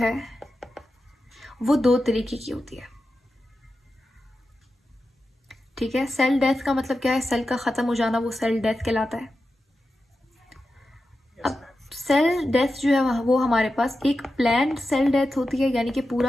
वो दो तरीके की होती है। ठीक है, सेल डेथ का मतलब क्या है? सेल का ख़त्म हो जाना, वो सेल डेथ कहलाता है। अब सेल डेथ जो है वो हमारे पास एक प्लान्ड सेल डेथ होती है, यानी कि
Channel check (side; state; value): both; normal; correlation 0.91